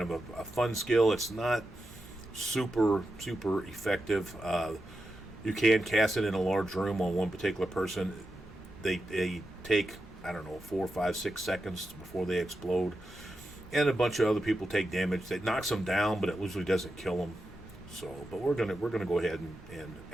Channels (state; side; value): normal; both; correlation 0.89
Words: of a fun skill. It's not super effective. You can cast it in a large room on one particular person. They take, I don't know, 4, 5, 6 seconds before they explode, and a bunch of other people take damage. That knocks them down, but it usually doesn't kill them. So, but we're gonna go ahead and